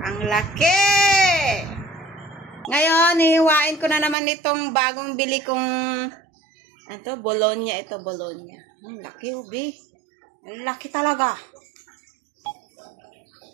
ang laki! Ngayon, hihiwain ko na naman itong bagong bili kong Bologna. Ito, Bologna. Ang laki, ubi. Ang laki talaga.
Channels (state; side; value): drops out; left; at 4.2 s